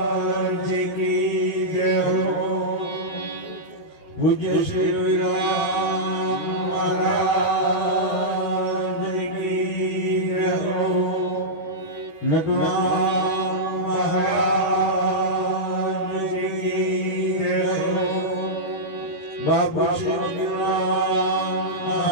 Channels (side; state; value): right; late; 13 ms